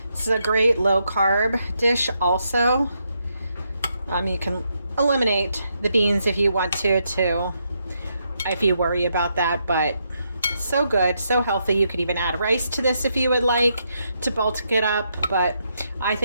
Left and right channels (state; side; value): inverted; both; correlation -0.79